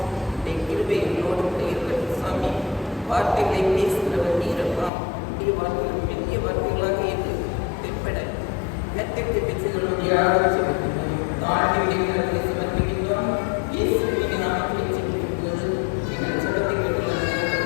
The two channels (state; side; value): drops out; right; at 4.9 s